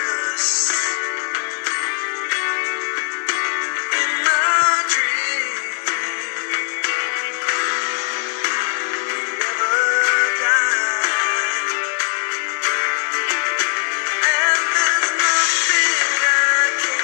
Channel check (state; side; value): silent; right; 62 dB below the other